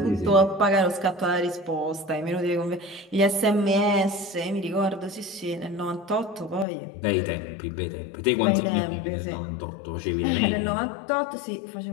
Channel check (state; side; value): drops out; right; at 6.7 s